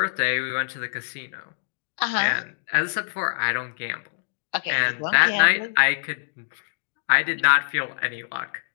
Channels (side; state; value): right; silent; digital silence